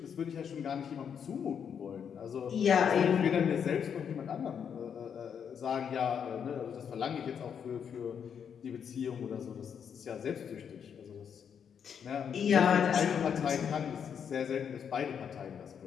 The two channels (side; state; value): right; quieter; 7.6 dB